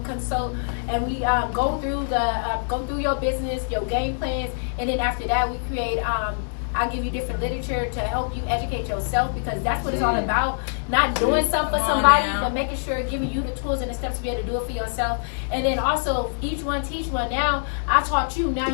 consult, and we go through your business, your game plans, and then after that we create. I'll give you different literature to help you educate yourself, because that's what it's all about. Not doing something for somebody, but making sure, giving you the tools and the steps to be able to do it for yourself. And then also, each one teach one. Now, I taught you, now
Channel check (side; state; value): right; silent; digital silence